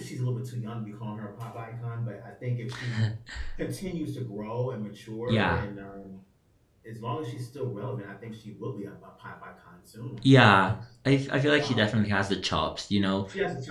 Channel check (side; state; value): both; identical; correlation 1.00